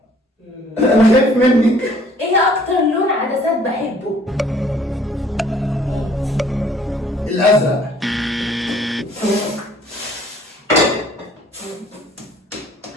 انا خايف منك. ايه اكتر لون عدسات بحبه؟ الازرق.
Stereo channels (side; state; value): both; normal; correlation 0.57